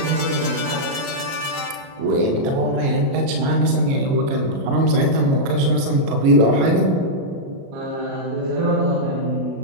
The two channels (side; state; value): left; late; 37 ms